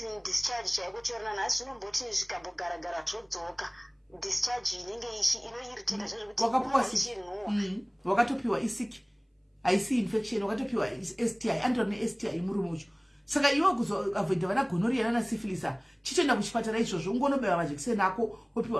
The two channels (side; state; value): both; identical; correlation 1.00